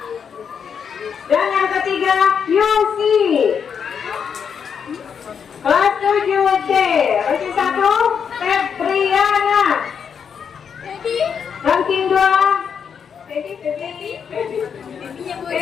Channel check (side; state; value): right; quieter; 7.0 dB